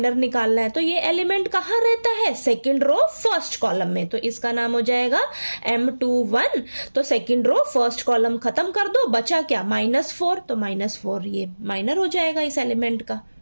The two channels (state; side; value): inverted; both; correlation -1.00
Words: निकालना है। तो ये एलिमेंट कहां रहता है? सेकंड रो फर्स्ट कॉलम में, तो इसका नाम हो जाएगा M21। तो सेकंड रो फर्स्ट कॉलम खत्म कर दो, बचा क्या? -4, तो -4 ये माइनर हो जाएगा इस एलिमेंट का।